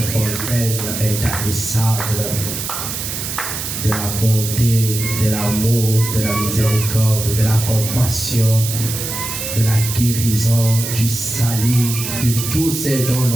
fontaine intarissable de la bonté, de l'amour, de la miséricorde, de la compassion, de la guérison, du salut, de tout ce dont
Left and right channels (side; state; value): right; noise; hiss, 5 dB below the sound